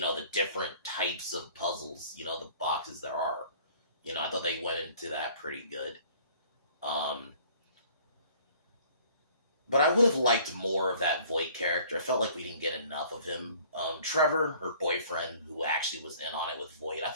know, the different types of puzzles, the boxes there are. I thought they went into that pretty good. But I would have liked more of that Voight character. I felt like we didn't get enough of him. Trevor, her boyfriend, who actually was in on it with Voight, I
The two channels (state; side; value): inverted; both; correlation -0.54